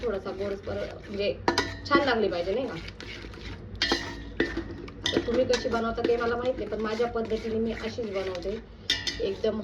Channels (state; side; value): identical; both; correlation 1.00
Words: थोडासा गोडसर म्हणजे छान लागली पाहिजे नाही का. तुम्ही कशी बनवता ते मला माहित नाही, पण माझ्या पद्धतीने मी अशीच बनवते, एकदम